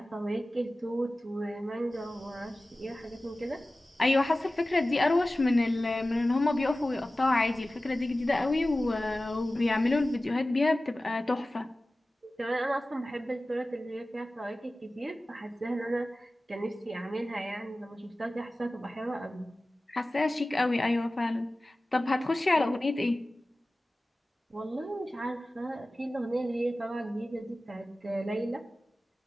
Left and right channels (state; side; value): normal; both; correlation 0.96